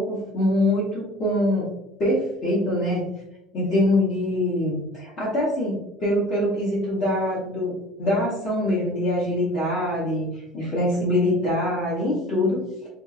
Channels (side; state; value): both; normal; correlation 0.45